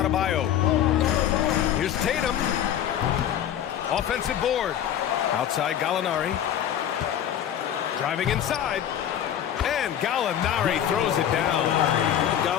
Here's Tatum. Offensive board. Outside Gallinari. Driving inside. And Gallinari throws it down.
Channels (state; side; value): quieter; right; 10.3 dB